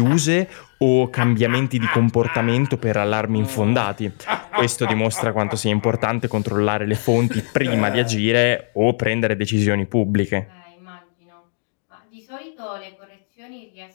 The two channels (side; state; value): right; silent; digital silence